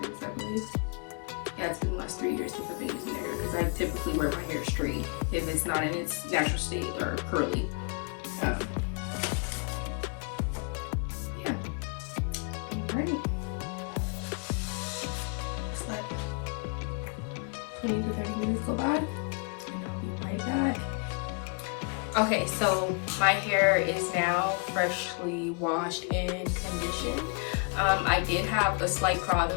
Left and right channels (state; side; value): quieter; right; 37.9 dB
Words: I believe. Yeah, it's been the last 3 years since I've been using their hair, because I typically wear my hair straight if it's not in its natural state or curly. Yeah. All right. Let's let 20 to 30 minutes go by, and I'll be right back. Okay, so my hair is now freshly washed and conditioned. I did have a slight